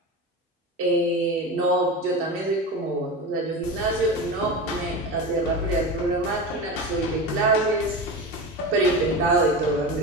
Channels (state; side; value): normal; both; correlation 0.25